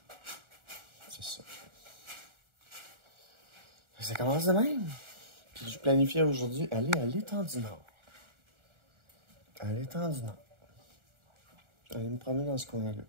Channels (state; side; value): late; left; 1.4 ms